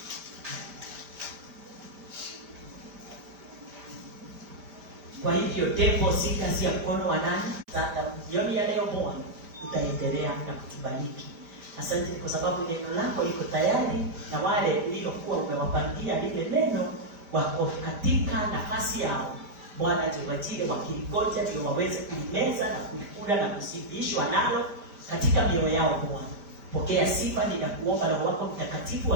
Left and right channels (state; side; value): late; left; 5.0 ms